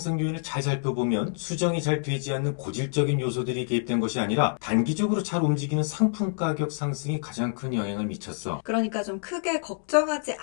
요인을 잘 살펴보면 수정이 잘 되지 않는 고질적인 요소들이 개입된 것이 아니라 단기적으로 잘 움직이는 상품 가격 상승이 가장 큰 영향을 미쳤어. 그러니까 좀 크게 걱정하지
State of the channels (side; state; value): right; silent; digital silence